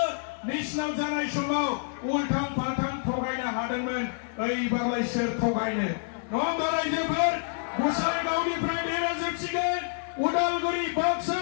मेसिनाव जानाय समाव उल्थां फाल्थां थगायनो हादोंमोन एबारलाय सोर थगायनो नङा होमबा रायजोफोर गोसाइगावनिफ्राय देरहाजोबसिगोन उदालगुरि बाक्सा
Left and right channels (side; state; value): right; silent; 59 dB below the other